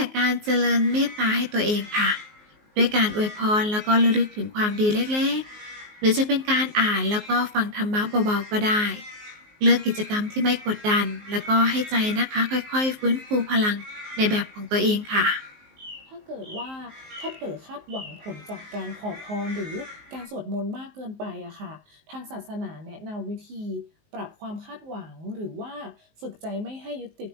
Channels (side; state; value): left; late; 19 ms